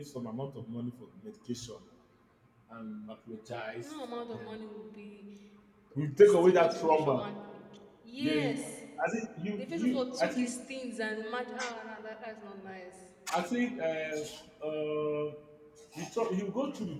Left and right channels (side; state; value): both; identical; correlation 1.00